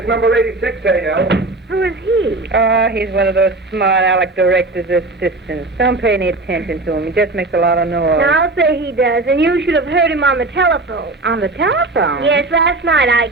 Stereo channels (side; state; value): left; quieter; 3.0 dB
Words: number 86, A.L. Who is he? Oh, he's one of those smart aleck director's assistants. Don't pay any attention to him. He just makes a lot of noise. Now, I'll say he does, and you should have heard him on the telephone. On the telephone? Yes, last night I